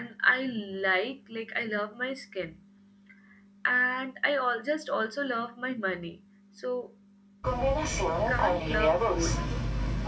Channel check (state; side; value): identical; both; correlation 1.00